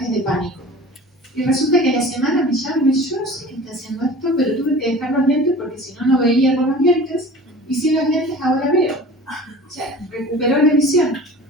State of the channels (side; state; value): both; normal; correlation 0.40